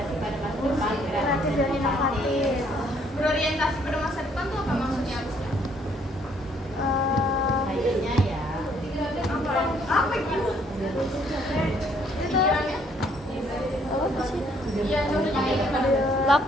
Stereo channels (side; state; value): both; normal; correlation 0.65